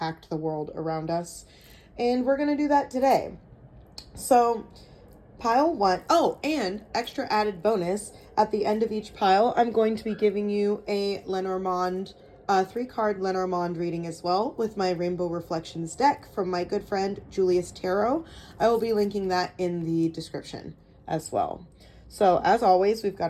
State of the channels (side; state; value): both; identical; correlation 1.00